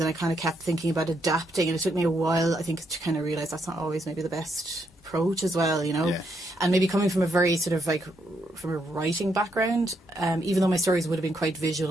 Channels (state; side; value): normal; both; correlation 0.77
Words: and I kind of kept thinking about adapting, and it took me a while, I think, to kind of realise that's not always maybe the best approach as well, and maybe coming from a very sort of like from a writing background, even though my stories would have been quite